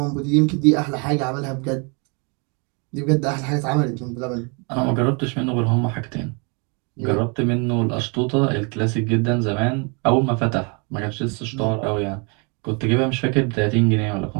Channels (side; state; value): left; quieter; 33.7 dB